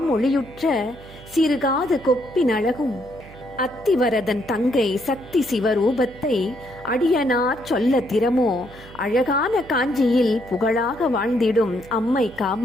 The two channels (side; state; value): right; noise; hum, 19 dB below the sound